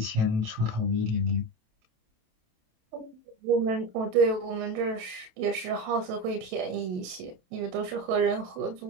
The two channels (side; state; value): left; late; 27 ms